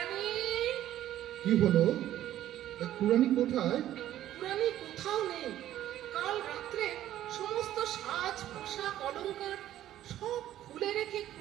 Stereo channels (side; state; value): left; quieter; 12.7 dB